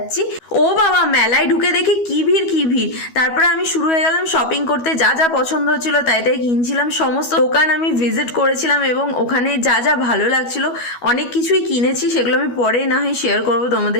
ও বাবা, মেলায় ঢুকে দেখি কি ভিড় কি ভিড়। তারপরে আমি শুরু হয়ে গেলাম শপিং করতে, যা যা পছন্দ হচ্ছিল তাই তাই কিনছিলাম। সমস্ত দোকান আমি ভিজিট করেছিলাম, এবং ওখানে যা যা ভালো লাগছিল অনেক কিছুই কিনেছি, সেগুলো আমি পরে না হয় শেয়ার করবো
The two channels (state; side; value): late; right; 12 ms